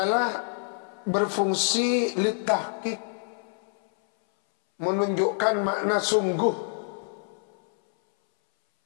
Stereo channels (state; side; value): silent; right; 60 dB below the other